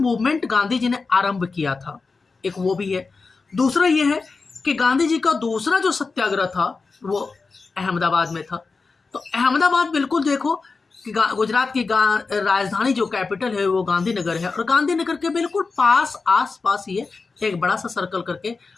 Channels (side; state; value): right; quieter; 4.3 dB